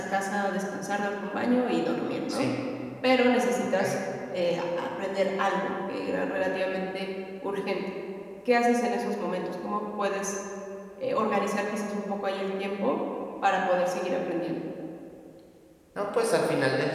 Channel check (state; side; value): identical; both; correlation 1.00